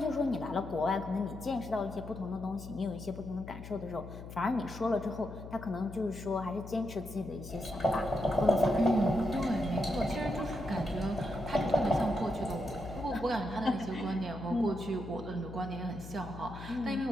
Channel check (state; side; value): noise; left; hum, 12 dB below the sound